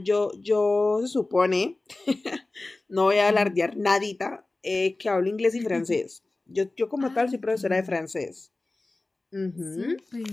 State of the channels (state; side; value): quieter; right; 3.1 dB